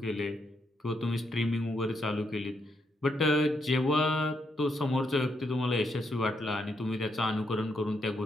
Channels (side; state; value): both; normal; correlation 0.78